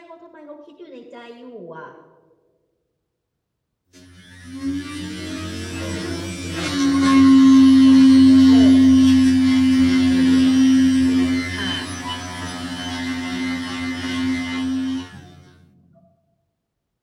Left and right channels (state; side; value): identical; both; correlation 1.00